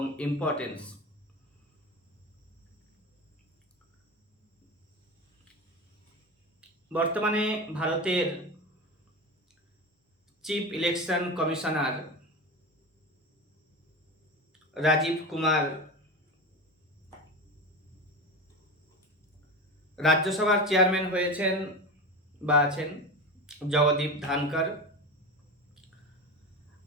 ইম্পর্টেন্স। বর্তমানে ভারতের chief election commissioner Rajiv Kumar রাজ্যসভার চেয়ারম্যান হয়েছেন বা আছেন জগদীপ ধানকর,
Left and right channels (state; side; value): normal; both; correlation 0.25